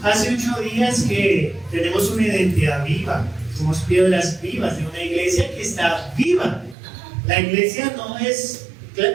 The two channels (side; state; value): left; drops out; at 6.8 s